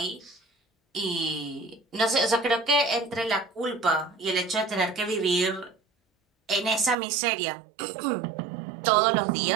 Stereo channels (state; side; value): drops out; left; at 7.0 s